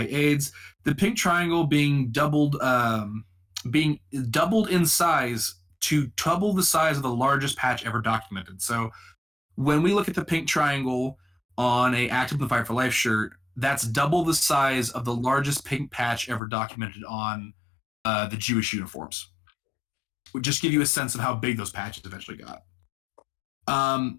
AIDS, the pink triangle being doubled in size to double the size of the largest patch ever documented. So when we look at the pink triangle on a Act Up in the Fight for Life shirt, that's double the size of the largest pink patch ever documented on the Jewish uniforms. Would just give you a sense of how big those patches eventually got.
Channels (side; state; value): right; drops out; at 16.4 s